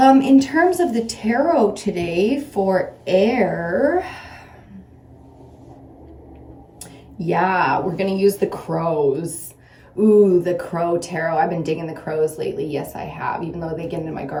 terms of the tarot today for air, yeah, we're going to use the crows. Ooh, the crow tarot. I've been digging the crows lately. Yes, I have, even though they get into my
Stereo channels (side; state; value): both; identical; correlation 1.00